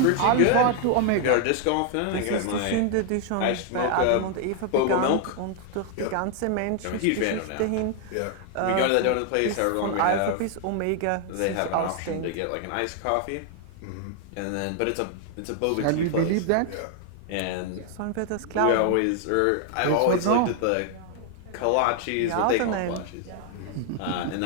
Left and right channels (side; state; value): both; different; correlation 0.00